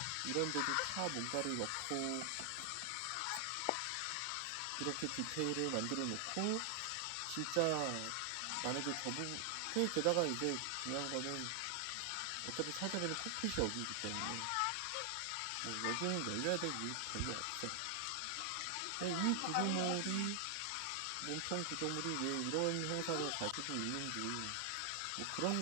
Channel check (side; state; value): both; different; correlation 0.00